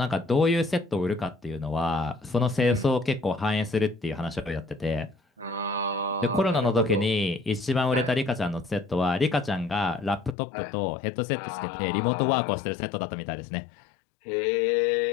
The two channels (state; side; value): drops out; right; at 10.4 s